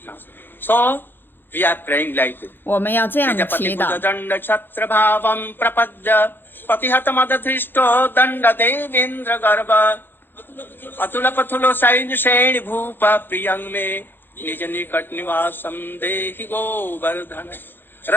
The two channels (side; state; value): right; late; 0.099 ms